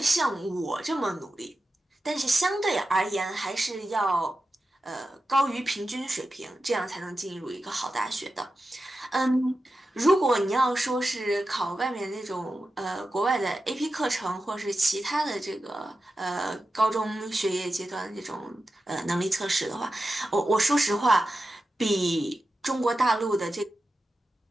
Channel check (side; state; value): both; normal; correlation 0.92